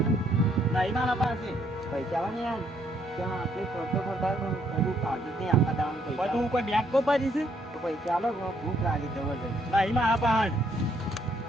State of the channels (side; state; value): both; normal; correlation 0.70